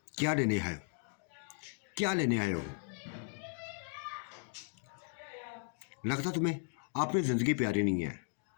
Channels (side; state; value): right; silent; 53 dB below the other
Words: क्या लेने है, क्या लेने आए हो? लगता तुम्हें आपने जिंदगी प्यारी नहीं है,